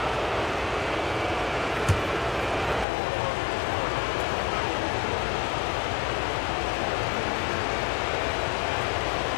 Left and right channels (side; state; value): right; drops out; at 2.9 s